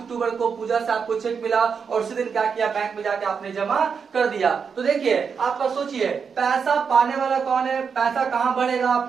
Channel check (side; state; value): left; quieter; 6.1 dB